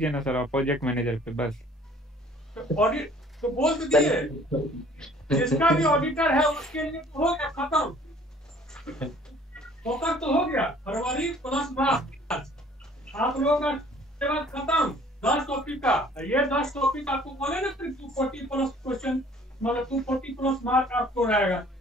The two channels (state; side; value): normal; both; correlation 0.55